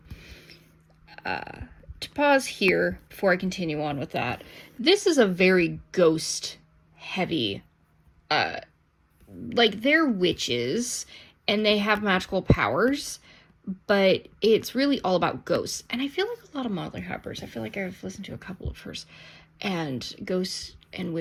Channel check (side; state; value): both; identical; correlation 1.00